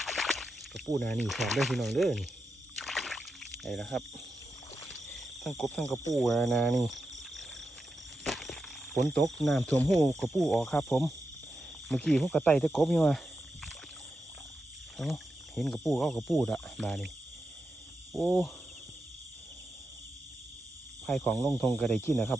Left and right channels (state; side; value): normal; both; correlation 0.88